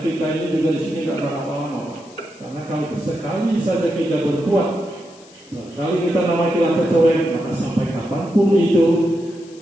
ini juga di sini tidak lama-lama. Karena kalau sekali saja kita berbuat, sekali kita nama kita tercoreng, maka sampai kapanpun itu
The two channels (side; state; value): left; noise; hiss, 25 dB below the sound